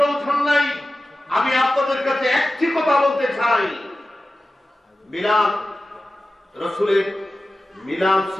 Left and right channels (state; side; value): normal; both; correlation 0.95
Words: নাই। আমি আপনাদের কাছে একটি কথা বলতে চাই, মিলাদ রাসূলের মিলাদ